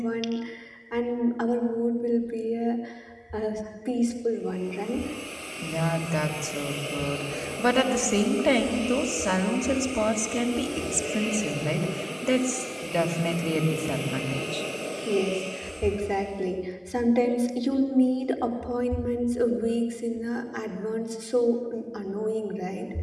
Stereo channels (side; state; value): both; identical; correlation 1.00